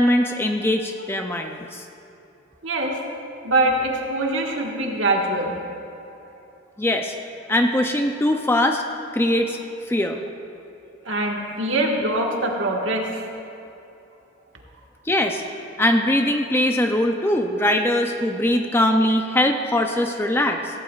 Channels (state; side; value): normal; both; correlation 0.46